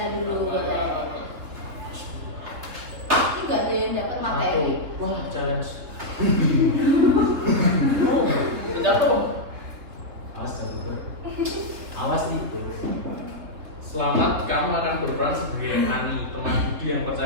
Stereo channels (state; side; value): late; left; 3.6 ms